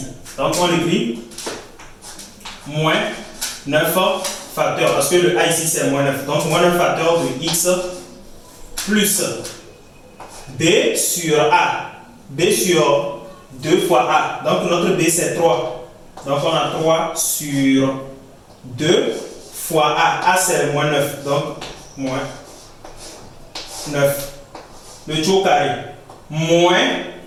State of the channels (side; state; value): both; identical; correlation 1.00